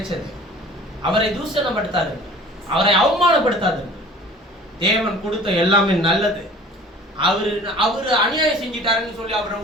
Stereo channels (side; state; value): both; normal; correlation 0.46